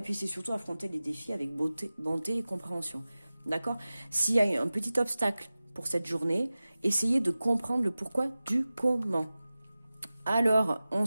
puis c'est surtout affronter les défis avec bonté et compréhension, d'accord. S'il y a un petit obstacle pour cette journée, essayez de comprendre le pourquoi du comment. Alors, on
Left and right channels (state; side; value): inverted; both; correlation -0.96